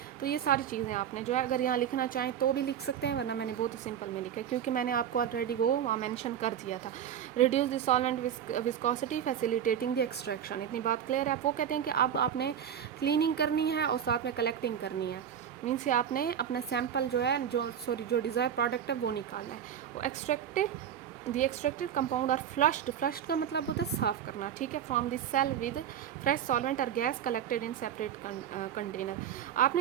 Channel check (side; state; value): left; quieter; 9.2 dB